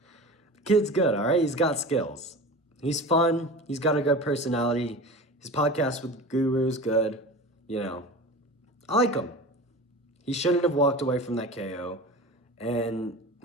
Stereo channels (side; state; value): both; normal; correlation 0.33